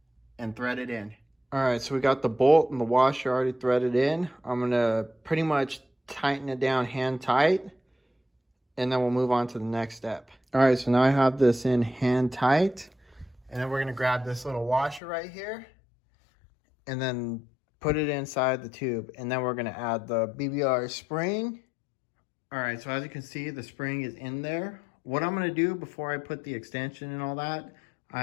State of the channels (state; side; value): drops out; right; at 15.0 s